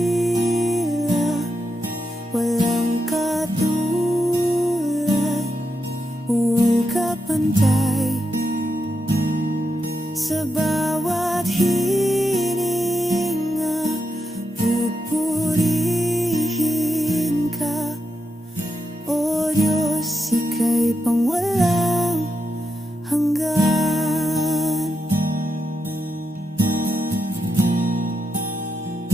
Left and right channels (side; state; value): both; normal; correlation 0.85